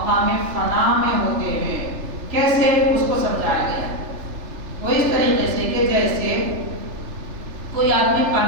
فنا میں ہوتے ہیں۔ کیسے؟ اس کو سمجھایا گیا وہ اس طریقے سے کہ جیسے کوئی آدمی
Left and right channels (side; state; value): left; late; 3.4 ms